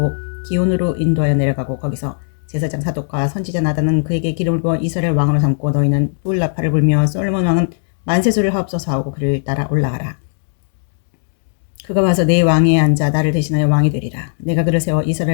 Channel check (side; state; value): right; silent; digital silence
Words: 기온으로 인도하여 내려가고 거기서 제사장 사독과 선지자 나단은 그에게 기름을 부어 이스라엘 왕으로 삼고 너희는 뿔나팔을 불며 솔로몬 왕은 만세수를 하옵소서 하고 그를 따라 올라가라. 그가 와서 내 왕위에 앉아 나를 대신하여 왕이 되리라. 내가 그를 세워